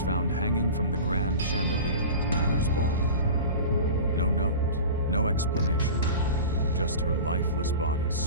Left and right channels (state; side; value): inverted; both; correlation -0.34